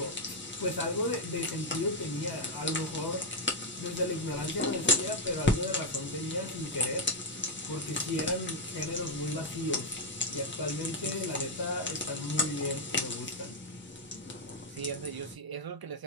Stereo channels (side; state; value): both; normal; correlation 0.02